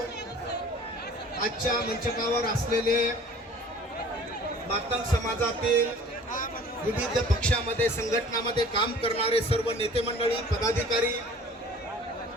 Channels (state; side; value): normal; both; correlation 0.48